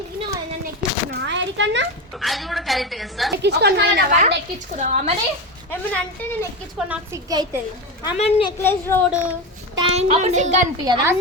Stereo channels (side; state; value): both; normal; correlation 0.18